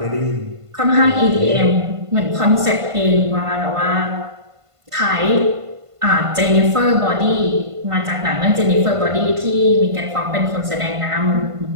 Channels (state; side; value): late; left; 1.5 ms